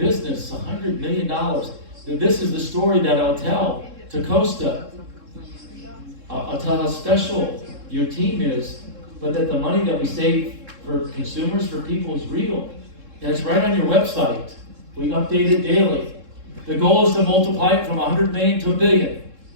$100 million. This is the story that I'll tell to Costa. I'll tell how special your team is, but that the money that we save for consumers, for people, is real. And it's right on your website. We update it daily. The goal is to multiply it from 100 million to 1 billion.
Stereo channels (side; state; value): left; late; 3.7 ms